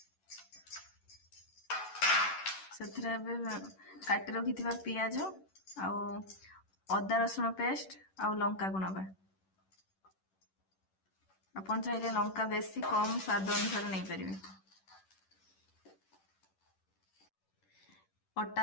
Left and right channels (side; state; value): right; late; 10 ms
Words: ସେଥିରେ ଏବେ କାଟି ରଖିଥିବା ପିଆଜ ଆଉ ଅଦା ରସୁଣ ପେଷ୍ଟ ଆଉ ଲଙ୍କାକୁ ନବା। ଆପଣ ଚାହିଁଲେ ଲଙ୍କା ବେଶୀ କମ ସ୍ୱାଦ ଅନୁସାରେ ନେଇପାରିବେ।